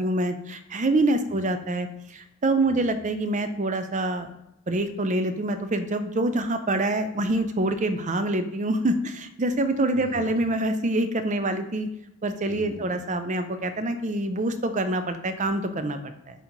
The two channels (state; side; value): normal; both; correlation 0.44